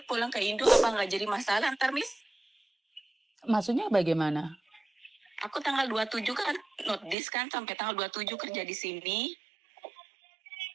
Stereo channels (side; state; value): left; drops out; at 7.2 s